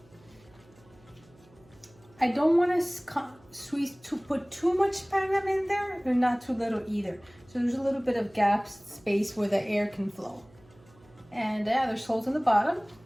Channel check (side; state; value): right; noise; hum, 27 dB below the sound